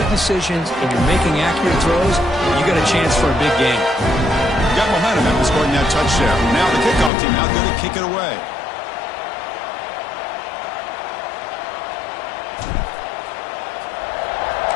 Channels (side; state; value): right; drops out; at 7.1 s